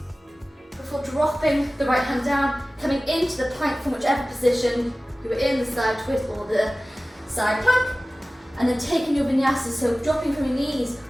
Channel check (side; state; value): both; normal; correlation 0.97